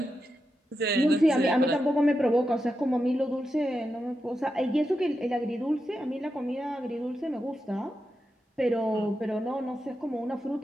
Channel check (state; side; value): normal; both; correlation 0.88